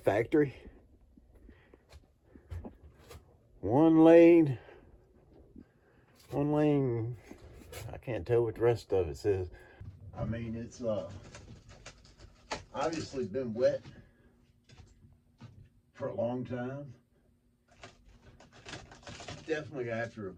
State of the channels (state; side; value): identical; both; correlation 1.00